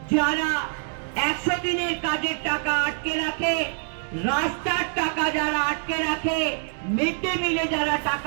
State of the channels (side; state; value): left; silent; 60 dB below the other